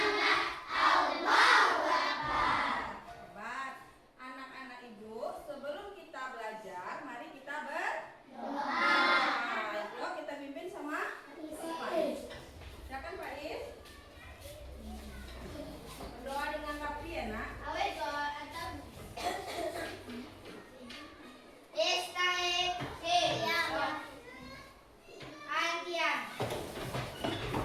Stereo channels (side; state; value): both; identical; correlation 1.00